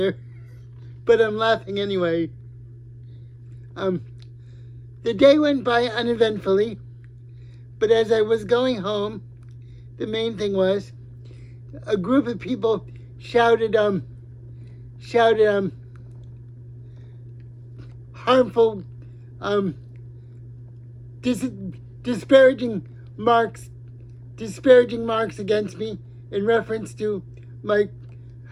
but I'm laughing anyway. The day went by uneventfully, but as I was going home, the main thing was a group of people shouted harmful, disparaging marks against me in reference to my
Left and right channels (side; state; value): both; identical; correlation 1.00